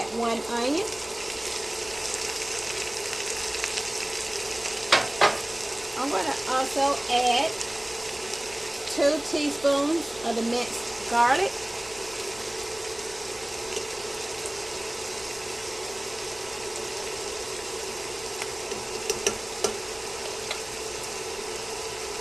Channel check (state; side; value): noise; left; rumble, 23 dB below the sound